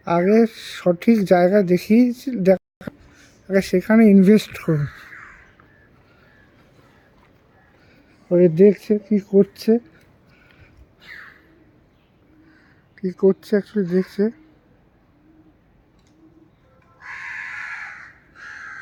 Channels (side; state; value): both; identical; correlation 1.00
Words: আগে সঠিক জায়গা দেখিয়েছি, আগে সেখানে ইনভেস্ট করুন। ওই দেখছে কি করছে, কি করছে অ্যাকচুয়ালি দেখছে,